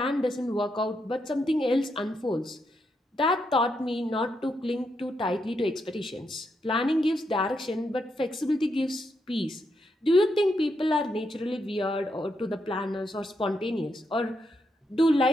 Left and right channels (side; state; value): both; normal; correlation 0.81